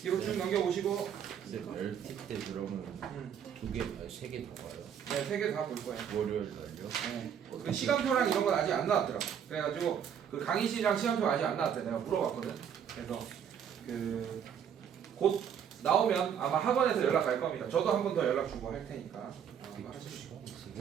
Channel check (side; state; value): left; quieter; 8.4 dB